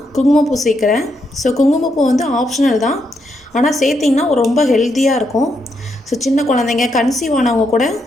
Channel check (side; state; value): both; normal; correlation 0.79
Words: குங்குமப்பூ சேர்க்குறேன். ஸோ குங்குமப்பூ ஆப்ஷனல் தான், ஆனால் சேர்த்திங்கன்னா ரொம்ப ஹெல்த்தியாக இருக்கும். ஸோ சின்ன குழந்தைங்க கன்சீவ் ஆனவங்க கூட